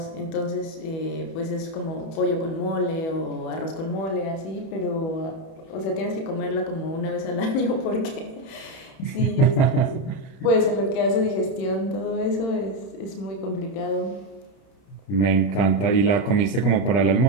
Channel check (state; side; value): late; right; 31 ms